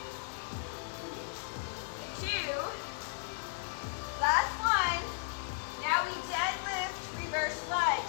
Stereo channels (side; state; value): right; silent; digital silence